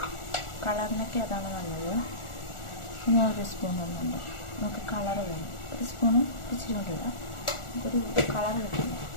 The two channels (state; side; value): late; right; 1.4 ms